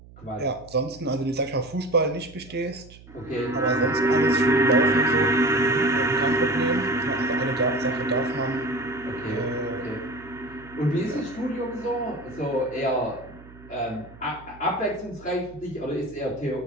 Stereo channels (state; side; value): noise; right; hum, 21 dB below the sound